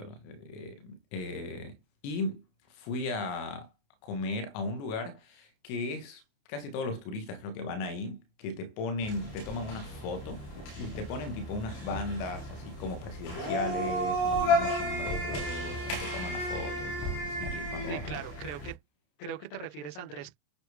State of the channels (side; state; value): right; late; 28 ms